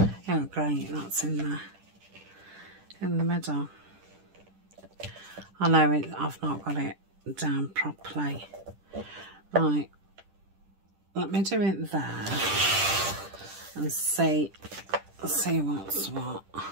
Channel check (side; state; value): left; late; 10 ms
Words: Oh great, that's in the middle. I know I've not got it down properly. Right, let me do it there and see what's what.